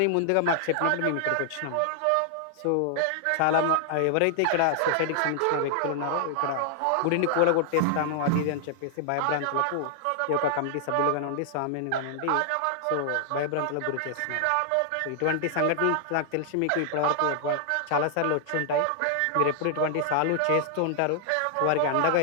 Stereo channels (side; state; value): both; different; correlation -0.01